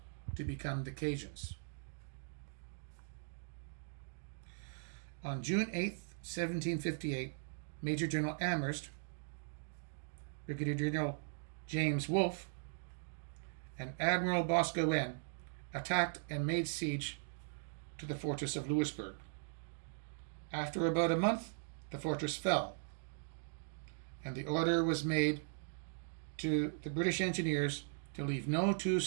to become the Cajuns. On June 8, 1758, Major General Amherst, Brigadier General James Wolfe, and Admiral Boscawen attacked and made siege to the fortress of Louisbourg. After about a month, the fortress fell, and the order was made to the British engineers to leave no 2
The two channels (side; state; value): left; silent; digital silence